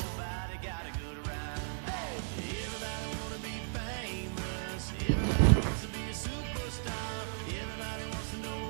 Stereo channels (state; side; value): silent; left; digital silence